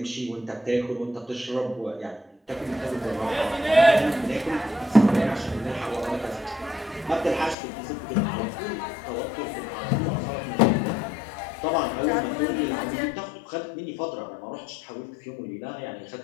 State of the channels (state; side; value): drops out; right; at 7.6 s